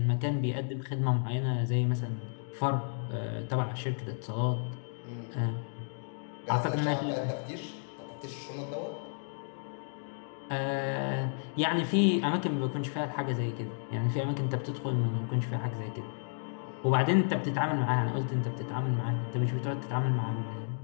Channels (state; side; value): silent; right; digital silence